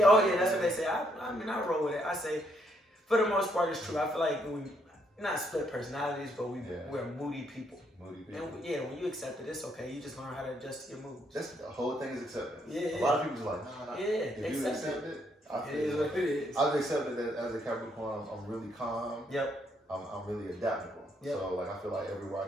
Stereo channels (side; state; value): both; normal; correlation 0.73